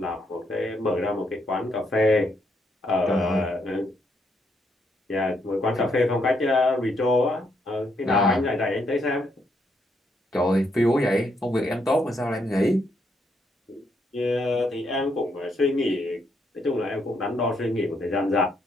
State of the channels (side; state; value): both; normal; correlation 0.76